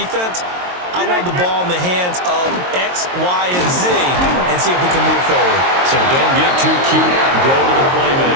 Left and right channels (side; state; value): left; late; 22 ms